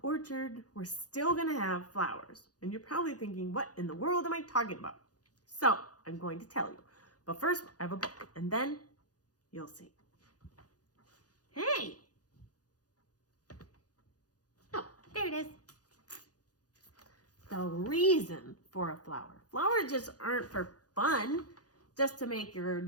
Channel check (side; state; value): right; late; 0.68 ms